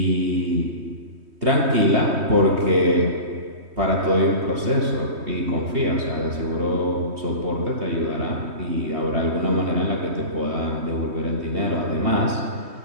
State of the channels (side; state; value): left; late; 3.2 ms